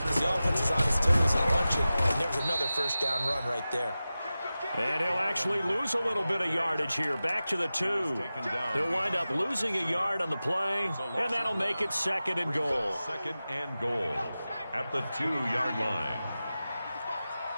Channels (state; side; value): inverted; both; correlation -0.95